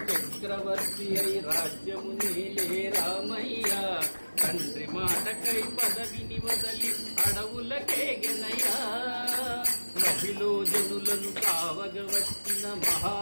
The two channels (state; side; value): inverted; both; correlation -1.00